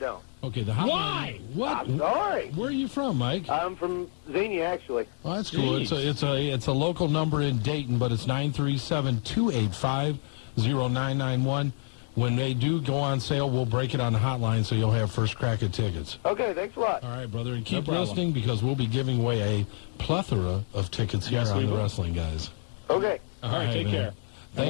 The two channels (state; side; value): silent; right; 59 dB below the other